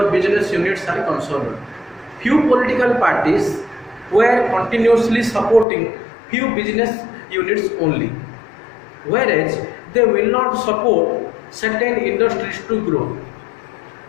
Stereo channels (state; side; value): drops out; right; at 5.7 s